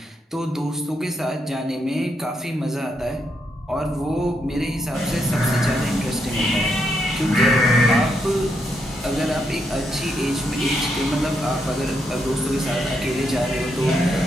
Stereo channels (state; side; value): normal; both; correlation 0.79